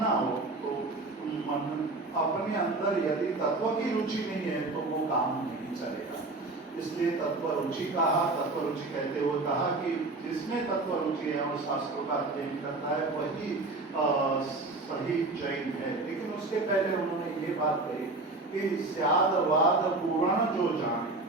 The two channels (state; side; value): quieter; left; 3.2 dB